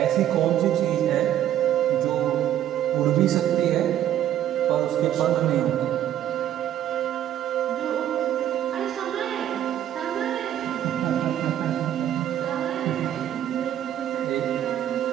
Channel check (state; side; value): quieter; left; 11.2 dB